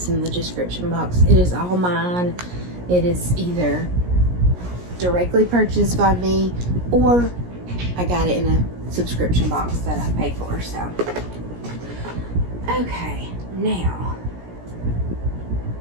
in the description box. It is all mine. It is either directly purchased by me, or I got it in a subscription box that I pay for, so. Okay, now,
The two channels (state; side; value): late; left; 17 ms